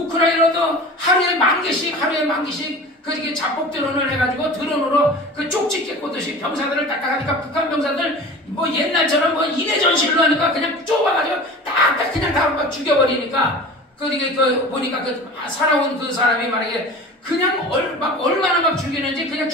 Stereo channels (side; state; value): both; normal; correlation 0.37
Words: 하루에 만 개씩 자폭 드론을 해가지고 드론으로 쪽집게 꽂듯이 병사들을 딱딱하니까 북한 병사들 옛날처럼 이내 전실로 하니까 그냥 좁아가지고 딱딱 그냥 다 막 죽여버리니까 보니까 살아온 그 사람이 만약에 그냥 얼마나 막 죽이는지 그냥